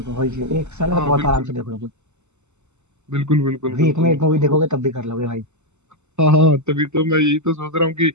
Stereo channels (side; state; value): left; late; 0.83 ms